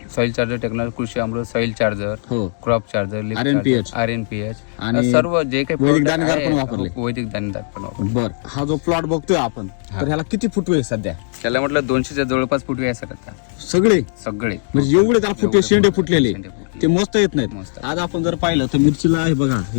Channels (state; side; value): silent; right; digital silence